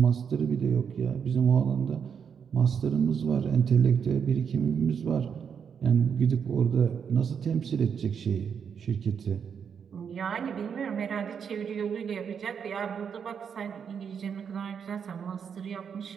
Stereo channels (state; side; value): quieter; left; 7.1 dB